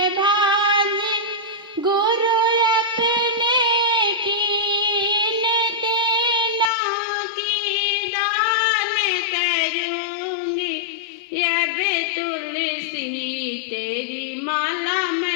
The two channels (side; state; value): right; drops out; at 6.7 s